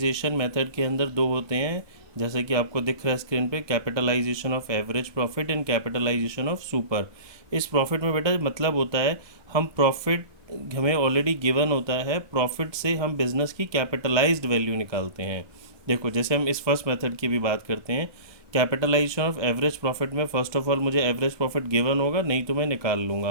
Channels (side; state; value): left; late; 1.2 ms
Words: मेथड के अंदर दो होते हैं, जैसे कि आपको दिख रहा है स्क्रीन पे, capitalization of average profit and capitalization of super. इस प्रॉफिट में बेटा मतलब होता है हम प्रॉफिट हमें ऑलरेडी गिवन होता है, प्रॉफिट से हम बिजनेस की कैपिटलाइज्ड वैल्यू निकालते हैं। देखो जैसे हम इस फर्स्ट मेथड की भी बात करते हैं, कैपिटलाइजेशन ऑफ एवरेज प्रॉफिट में फर्स्ट ऑफ ऑल मुझे एवरेज प्रॉफिट गिवन होगा, नहीं तो मैं निकाल